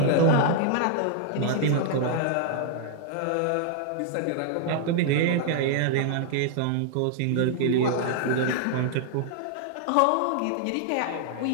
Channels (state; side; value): different; both; correlation -0.01